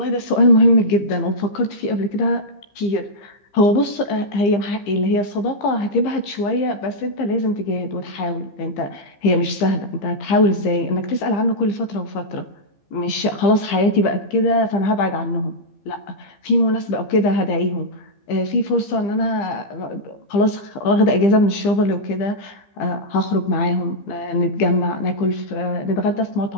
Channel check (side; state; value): right; late; 15 ms